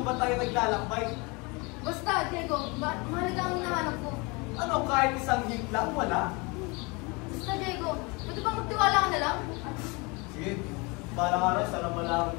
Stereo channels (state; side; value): quieter; right; 27.8 dB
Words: ba't tayo naglalakbay? Basta, Diego, mahalaga ang hinahanap ko. Ano, kahit isang hint lang, wala? Basta, Diego, pwede ba magtiwala ka na lang? Sige, para ka rin, sana malaman